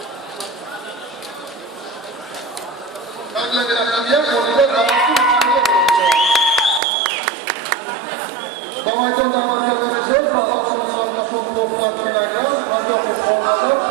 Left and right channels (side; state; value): left; drops out; at 6.8 s